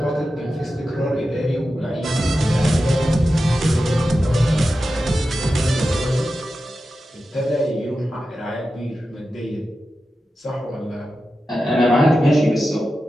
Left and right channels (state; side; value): normal; both; correlation 0.92